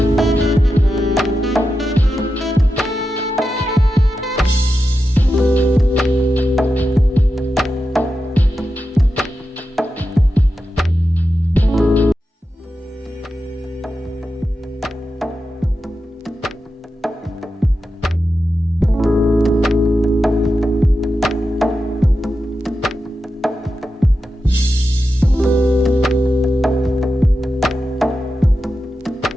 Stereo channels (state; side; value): normal; both; correlation 0.89